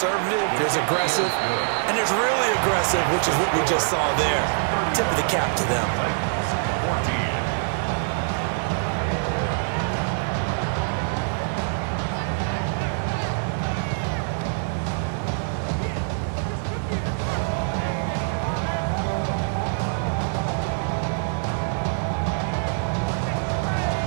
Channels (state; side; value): silent; left; 59 dB below the other